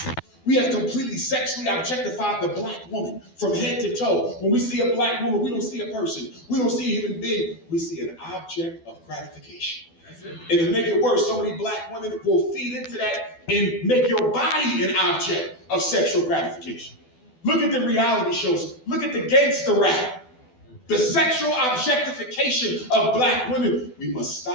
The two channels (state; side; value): late; right; 12 ms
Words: We have completely sexually objectified the black woman from head to toe. When we see a black woman, we don't see a person. We don't see a human being. We see an object of gratification. And to make it worse, so many black women will feed into that and make your body an object of sexual gratification. Look at the reality shows. Look at the gangster rap. The sexual objectification of black women. We must